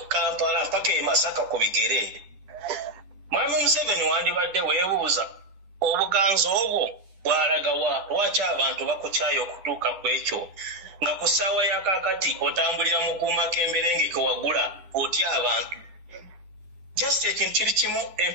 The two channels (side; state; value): left; late; 9.8 ms